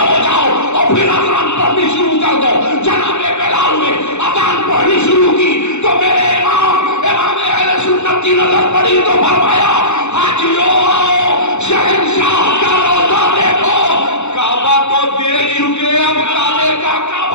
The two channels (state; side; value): late; right; 0.82 ms